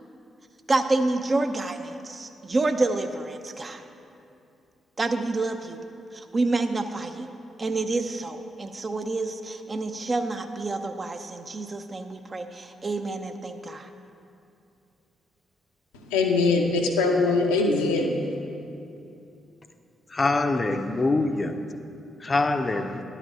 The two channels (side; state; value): both; normal; correlation 0.77